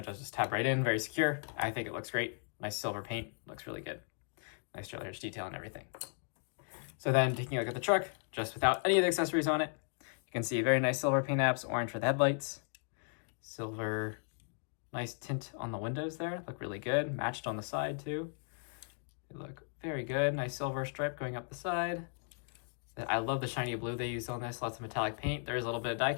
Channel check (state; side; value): silent; right; 54 dB below the other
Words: just tab right in, very secure. I think it looks great. Nice silver paint, looks really good. Nice trailer hitch detail and everything. So then taking a look at the truck, just without any of the accessories on it, you can see very nice silver paint apps, orange for the headlights, silver. Nice tint on the windows there, look really good. Matched on the side too. They look very good. Nice silver stripe going up the side. I love the shiny blue they used on this. Lots of metallic paint. There's a little bit of die